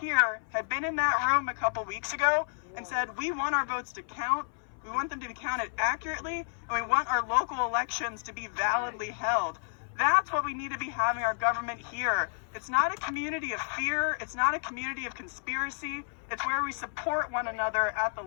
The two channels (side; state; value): right; silent; 57 dB below the other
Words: had been in that room a couple weeks ago and said, we want our votes to count, we want them to be counted accurately, and we want our local elections to be validly held. That's what we need to be having our government here. It's not a community of fear. It's not a community of conspiracy. It's where we support one another at the